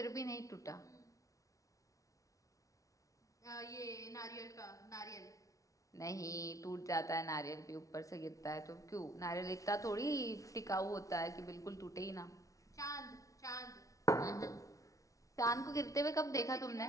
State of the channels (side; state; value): right; late; 0.16 ms